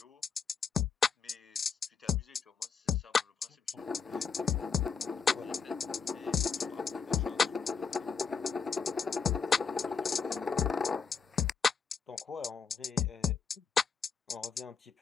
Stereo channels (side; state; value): right; quieter; 5.8 dB